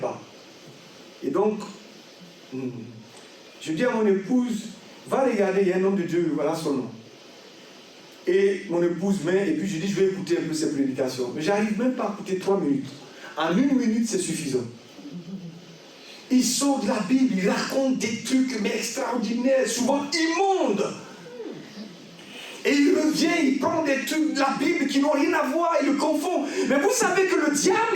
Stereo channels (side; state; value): both; identical; correlation 1.00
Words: Et donc, je dis à mon épouse, va regarder, il y a un homme de Dieu, voilà son nom. Et mon épouse vient, et puis je dis, je vais écouter un peu ses prédications. Mais j'arrive même pas à écouter 3 minutes. En 1 minute, c'est suffisant. Il sort de la Bible, il raconte des trucs mais extraordinaires, souvent immondes. Et il revient, il prend des trucs de la Bible qui n'ont rien à voir, il le confond. Mais vous savez que le diable,